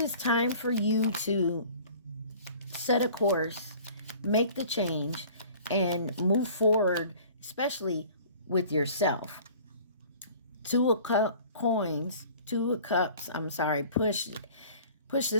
time for you to set a course, make the change, and move forward, especially with yourself. Two of coins, two of cups. I'm sorry. Push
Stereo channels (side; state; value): both; inverted; correlation -0.48